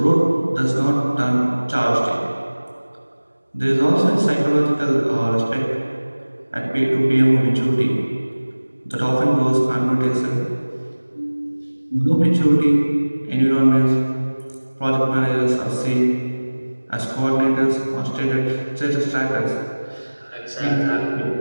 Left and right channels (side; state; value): both; inverted; correlation -1.00